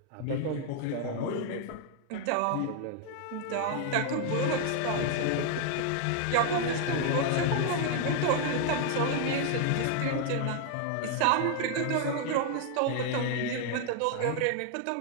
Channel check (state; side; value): different; both; correlation 0.00